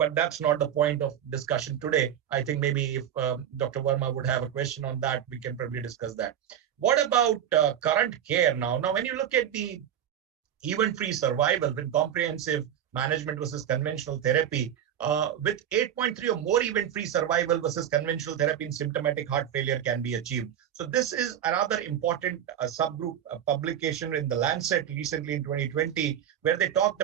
that's not the point of discussion today. I think maybe if Dr. Verma would have a question on that, we can probably discuss that. What about current care now? Now, when you look at the event-free survival with comprehensive management versus conventional therapy, with 8.3 or more event-free survival versus conventional therapy in symptomatic heart failure can be achieved. So this is another important subgroup publication in the Lancet recently in 2020, where they talked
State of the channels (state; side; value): quieter; left; 9.9 dB